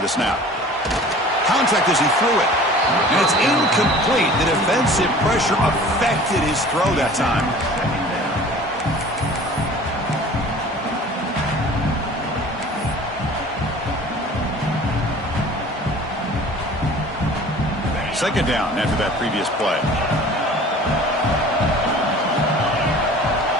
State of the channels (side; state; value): both; normal; correlation 0.45